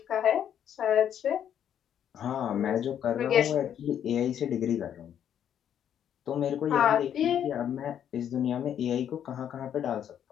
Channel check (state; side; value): quieter; right; 9.5 dB